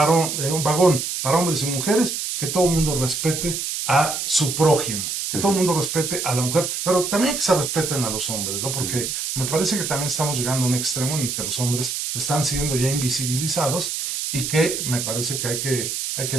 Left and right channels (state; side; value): noise; right; hiss, 3 dB below the sound